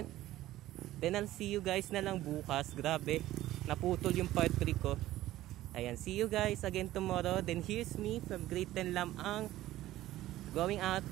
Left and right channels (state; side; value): quieter; left; 15.0 dB